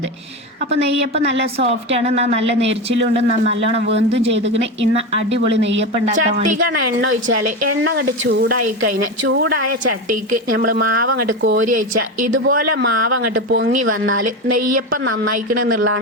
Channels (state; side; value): normal; both; correlation 0.19